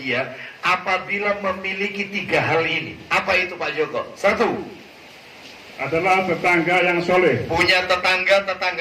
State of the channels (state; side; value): identical; both; correlation 1.00